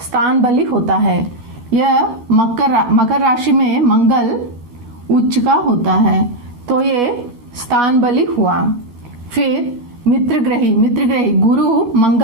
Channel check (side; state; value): left; late; 12 ms